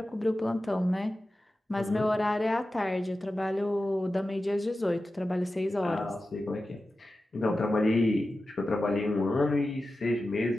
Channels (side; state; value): both; normal; correlation 0.93